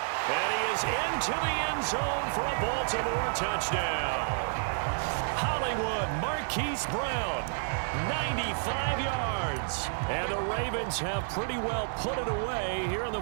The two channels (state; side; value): silent; left; digital silence